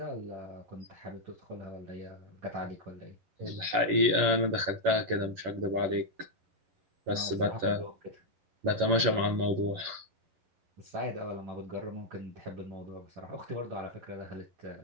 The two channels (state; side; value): late; left; 11 ms